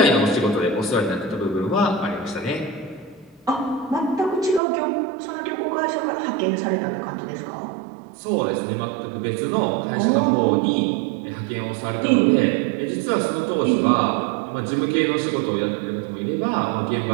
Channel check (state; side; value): drops out; left; at 4.6 s